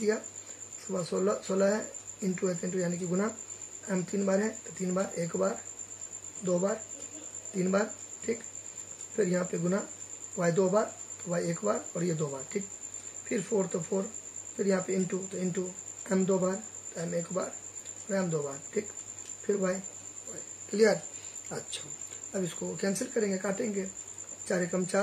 उसके बाद 16 है, इंटू है तो इंटू यानी कि गुना। एम 3 बार है तो 3 बार, 1 बार, 2 बार, 3 बार, ठीक। फिर यहाँ पे गुना, वाई 2 बार तो वाई 1 बार और ये 2 बार, ठीक। फिर 4 तो 4, फिर यहाँ पे इंटू तो इंटू, एम 2 बार तो एम 1 बार और एम 2 बार, ठीक। फिर वाई, क्लियर। अच्छा, अब इसको कैंसिल करेंगे, काटेंगे। 4 एकम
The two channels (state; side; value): identical; both; correlation 1.00